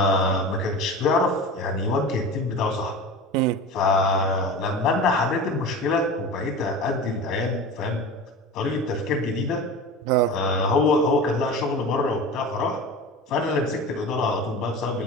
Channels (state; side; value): normal; both; correlation 0.32